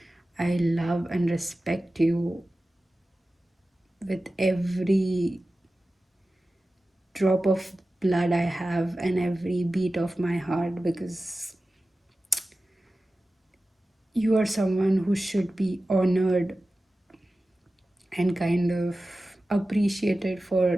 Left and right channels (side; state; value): both; normal; correlation 0.95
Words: I love and respect you with every drop of blood I have and every beat of my heart, because you are someone who should be honored and kind of appreciated